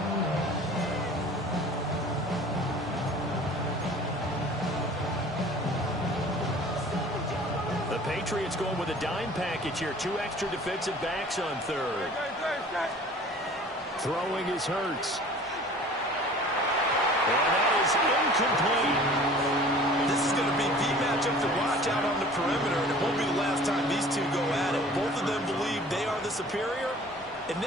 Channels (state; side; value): normal; both; correlation 0.46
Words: Patriots going with a dime package here. 2 extra defensive backs on 3rd. Throwing is Hurts. And that is incomplete. This is going to be the matchup to watch out on the perimeter, and it won't be the last time these two go at it. Both of them believe they are the superior. In